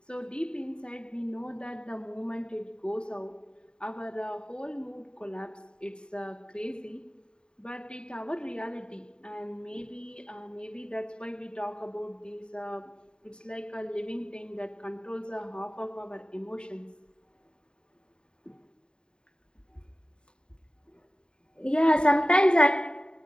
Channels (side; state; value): right; late; 0.049 ms